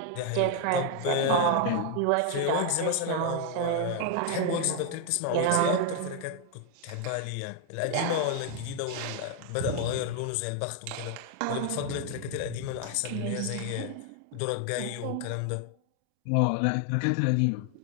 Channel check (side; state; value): both; different; correlation 0.00